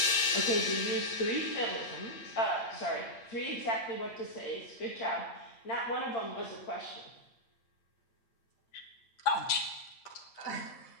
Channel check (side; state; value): right; late; 8.7 ms